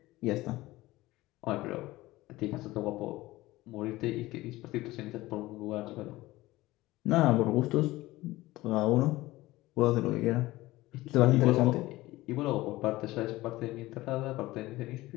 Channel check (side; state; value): right; quieter; 18.3 dB